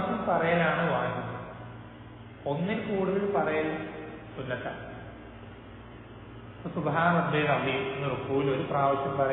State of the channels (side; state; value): both; identical; correlation 1.00